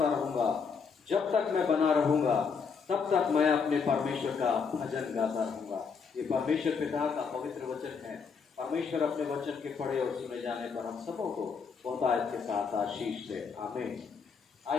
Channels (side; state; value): right; quieter; 5.7 dB